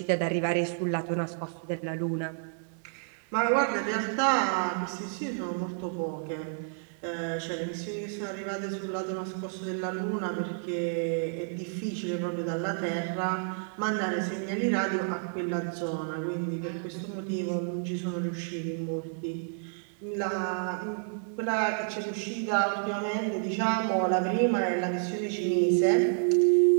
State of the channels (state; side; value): silent; left; digital silence